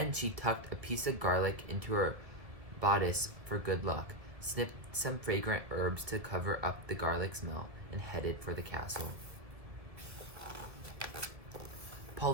she tucked a piece of garlic into her bodice for good luck, snipped some fragrant herbs to cover up the garlic smell, and headed for the castle.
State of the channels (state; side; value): late; left; 1.7 ms